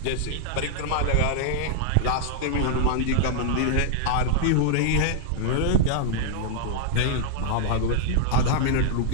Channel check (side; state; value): both; different; correlation -0.01